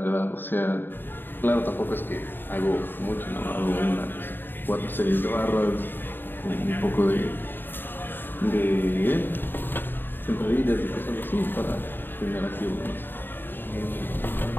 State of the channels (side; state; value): right; late; 0.095 ms